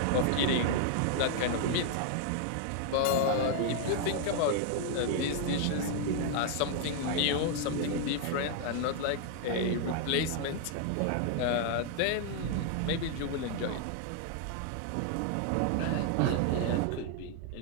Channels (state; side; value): different; both; correlation 0.00